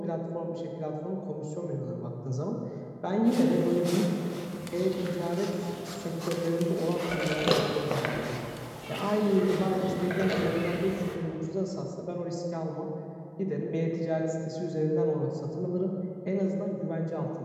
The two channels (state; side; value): identical; both; correlation 1.00